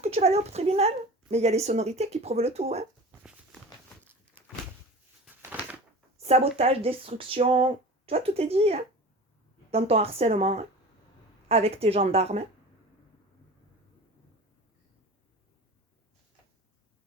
que tu vas aller au tribunal? Mais il y a les sonorités qui prouvent le tout. Hein. Sabotage, destruction, tu vois, tout est dit hein, dans ton harcèlement, hein, avec tes gendarmes. Hein.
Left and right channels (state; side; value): normal; both; correlation 0.36